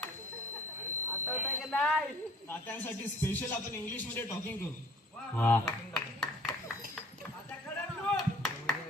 तात्यांसाठी स्पेशल आपण इंग्लिश मध्ये टॉकिंग करू. वा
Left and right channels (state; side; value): normal; both; correlation 0.52